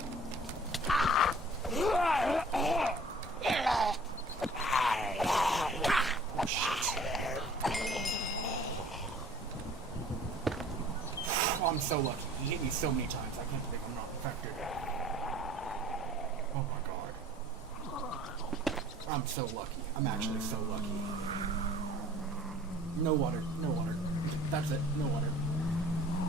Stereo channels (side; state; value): both; normal; correlation 0.50